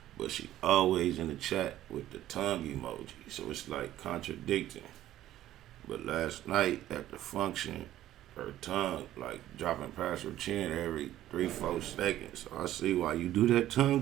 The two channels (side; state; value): left; quieter; 13.4 dB